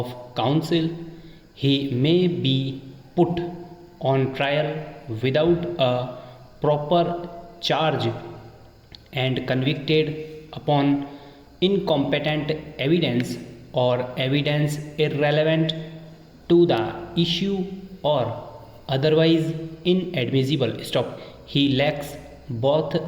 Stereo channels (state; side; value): identical; both; correlation 1.00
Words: counsel, he may be put on trial without a proper charge and convicted upon incompetent evidence or evidence irrelevant to the issue or otherwise inadmissible. Stop. He lacks both